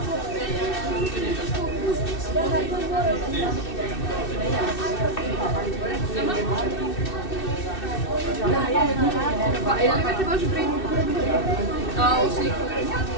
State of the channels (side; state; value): right; late; 2.6 ms